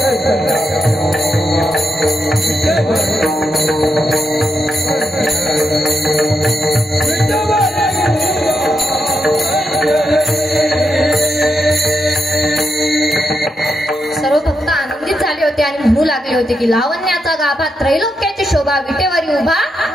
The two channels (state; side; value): normal; both; correlation 0.84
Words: सर्व भक्त आनंदित झाले होते आणि म्हणू लागले होते की लावण्याचा गाभा त्रैलोक्याची शोभा विटेवरी उभा